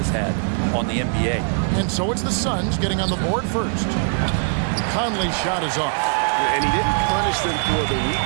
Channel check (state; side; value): silent; left; 65 dB below the other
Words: had on the NBA. And so it's the Suns getting on the board first. Conley's shot is off. And he didn't punish them for the weak